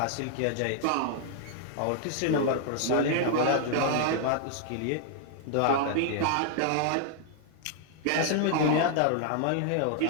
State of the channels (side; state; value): both; different; correlation 0.00